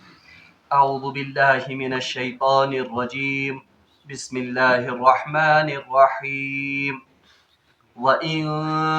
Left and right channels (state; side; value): identical; both; correlation 1.00